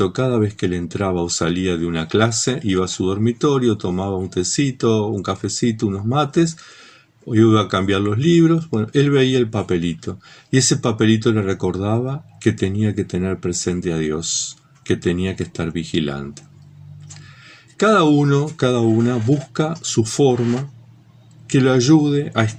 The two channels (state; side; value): identical; both; correlation 1.00